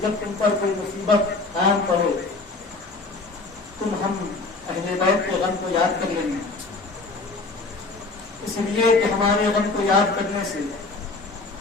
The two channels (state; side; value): quieter; right; 3.6 dB